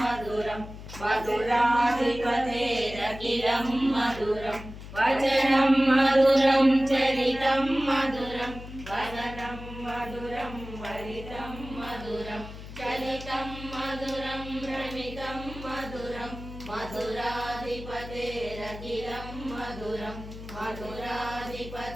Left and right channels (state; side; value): noise; left; hum, 13 dB below the sound